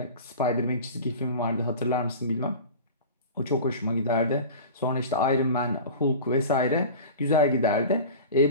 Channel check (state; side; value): inverted; both; correlation -0.35